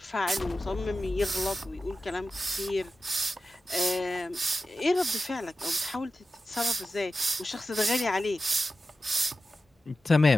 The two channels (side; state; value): both; normal; correlation 0.93